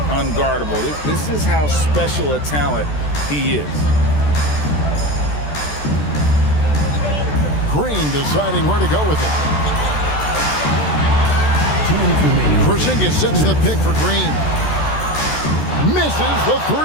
unguardable. This is how special a talent he is. Green deciding where to go with it. Porzingis sets the pick for Green. Misses the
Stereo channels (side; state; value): right; late; 14 ms